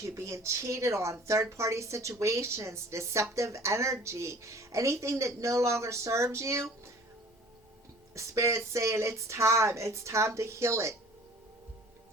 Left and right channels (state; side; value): normal; both; correlation 0.49